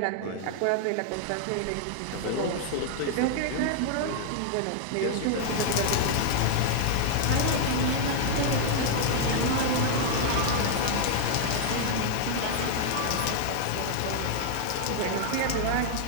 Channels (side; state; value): both; different; correlation 0.00